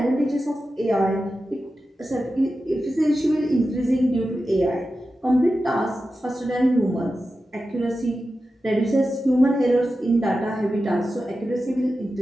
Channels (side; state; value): both; normal; correlation 0.92